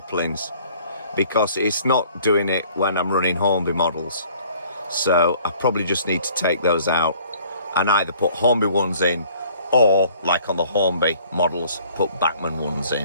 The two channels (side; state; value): both; inverted; correlation -0.55